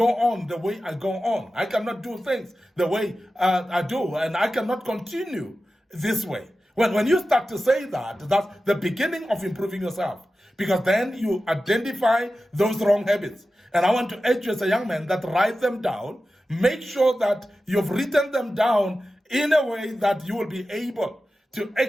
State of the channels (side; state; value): both; normal; correlation 0.93